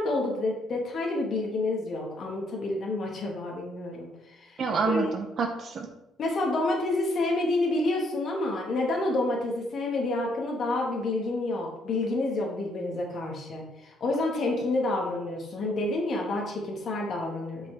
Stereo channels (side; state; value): both; normal; correlation 0.70